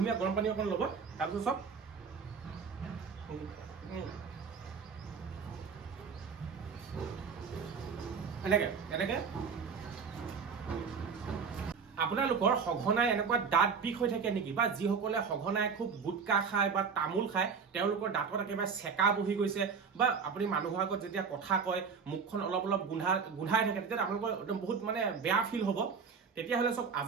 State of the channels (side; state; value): left; quieter; 5.8 dB